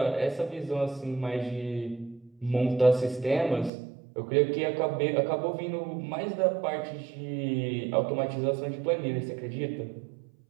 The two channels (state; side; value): drops out; left; at 3.7 s